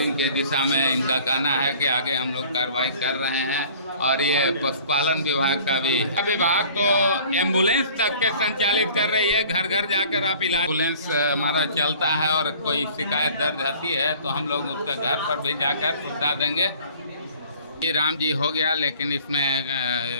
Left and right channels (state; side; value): inverted; both; correlation -0.50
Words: के दिशा में इनका कहना है कि आगे हम लोग कार्रवाई कर रहे हैं। और ये पशुपालन विभाग का भी विभाग तो एम्बुलेंस तक के संचालित कर रही है, घर घर जाकर आप इलाज एम्बुलेंस हमारा चलता है और कोई शिकायत दर्ज आती है तो हम लोग उसका घर पर भी जाकर सुविधा देंगे। ये राम जी हो गया, लेकिन इसमें